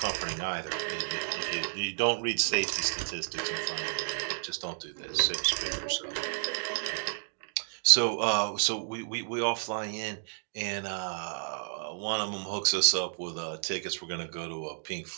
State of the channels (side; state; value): left; silent; digital silence